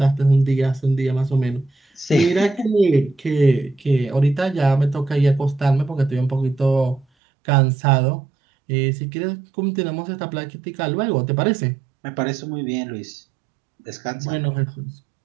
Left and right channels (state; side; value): drops out; left; at 7.1 s